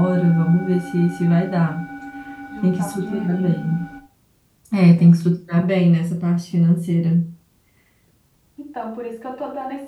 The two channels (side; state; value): both; identical; correlation 1.00